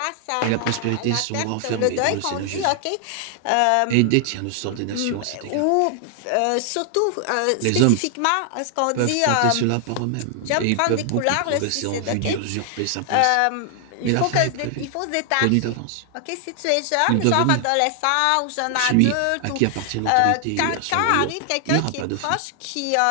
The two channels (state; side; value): different; both; correlation 0.00